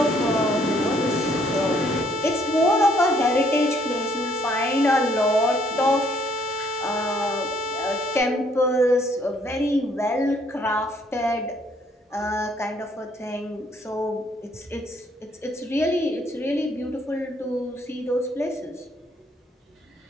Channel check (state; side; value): normal; both; correlation 0.66